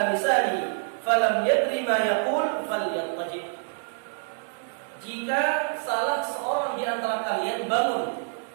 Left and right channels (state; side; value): silent; left; digital silence